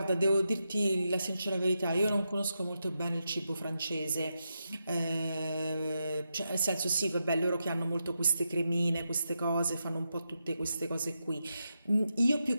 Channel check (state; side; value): inverted; both; correlation -0.86